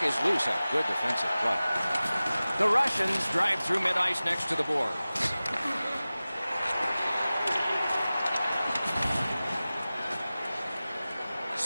is loose. A good defensive play. The Russians drive through mid-ice next to the boards.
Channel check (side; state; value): both; inverted; correlation -0.97